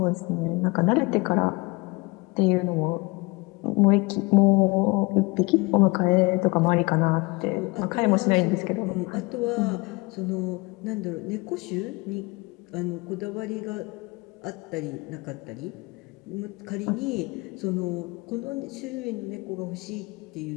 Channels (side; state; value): right; quieter; 25.2 dB